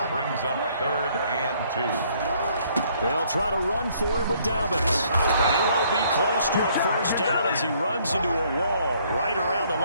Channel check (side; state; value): both; inverted; correlation -0.64